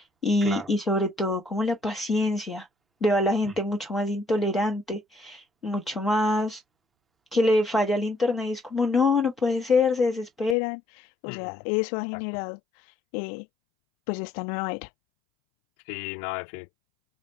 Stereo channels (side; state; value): right; drops out; at 10.6 s